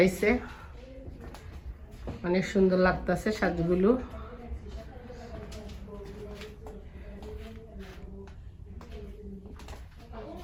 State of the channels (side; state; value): both; identical; correlation 1.00